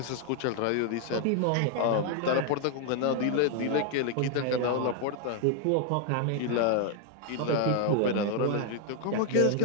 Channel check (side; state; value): both; different; correlation 0.00